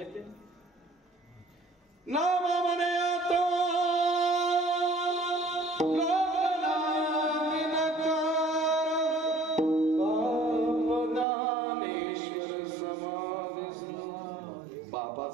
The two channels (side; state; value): left; drops out; at 11.2 s